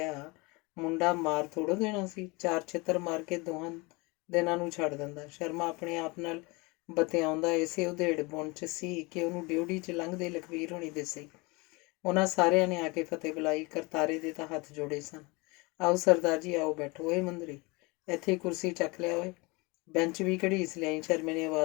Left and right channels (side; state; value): right; quieter; 26.1 dB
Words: ਮੁੰਡਾ ਮਾਰ ਥੋੜ੍ਹਾ ਦੇਣਾ ਸੀ। 4 ਛਿੱਤਰ ਮਾਰ ਕੇ ਦੋਹਾਂ ਦਿਨਾਂ ਨੂੰ ਛੱਡ ਦਿੰਦਾ। ਸ਼ਰਮਾ ਆਪਣੇ ਆਪ ਨਾਲ ਬਤਿਆਉਂਦਾ ਇਸੇ ਉਧੇੜ ਬੁਣ 'ਚ ਸੀ ਕਿ ਉਹਨੂੰ ਡਿਊਟੀ 'ਚ ਲੰਘਦੇ ਲਖਵੀਰ ਹੋਣੀ ਦਿਸੇ। ਉਹਨਾਂ ਸਾਰਿਆਂ ਨੇ ਆ ਕੇ ਫਤਿਹ ਬੁਲਾਈ। ਕਰਤਾਰੇ ਦੇ ਤਾਂ ਹੱਥ ਜੋੜੇ ਸਨ। ਆਓ ਸਰਦਾਰ ਜੀ, ਆਓ ਬੈਠੋ। ਓਏ ਮੁੰਦਰੀ, ਇੱਥੇ ਕੁਰਸੀ ਚੱਕ ਲਿਆ ਓਏ। ਬੈਂਚ ਵੀ ਘੜੀਸ ਲਿਆਈ। ਸ਼ਰਮੇ ਨੇ